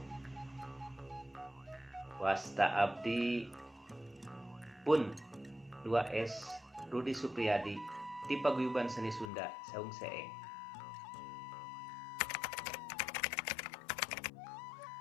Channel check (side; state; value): right; drops out; at 9.3 s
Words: wasta abdi pun 2S Rudi Supriyadi ti Paguyuban Seni Sunda Saung Seeng.